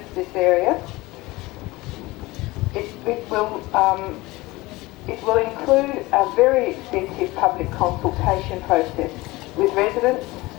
this area. It will include a very extensive public consultation process with residents,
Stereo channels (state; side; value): quieter; right; 20.7 dB